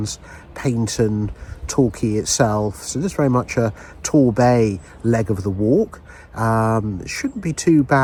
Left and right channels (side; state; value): both; identical; correlation 1.00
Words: Paignton, Torquay itself. So this is very much a Torquay leg of the walk. It shouldn't be too